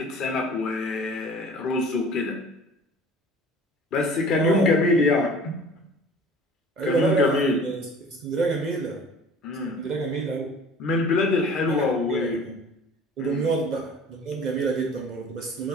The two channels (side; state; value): both; normal; correlation 0.46